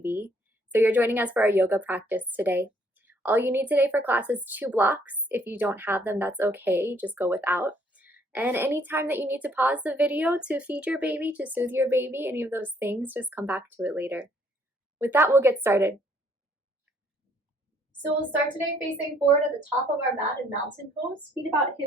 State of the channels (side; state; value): both; normal; correlation 0.65